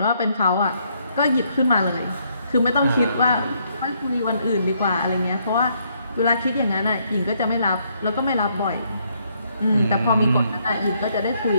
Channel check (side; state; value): both; inverted; correlation -0.72